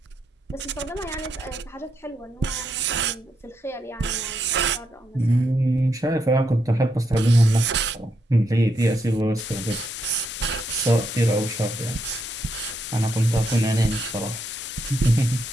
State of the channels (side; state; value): both; normal; correlation 0.79